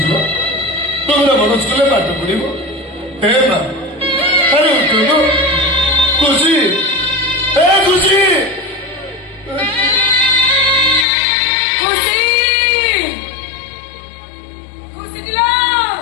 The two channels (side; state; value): right; drops out; at 11.1 s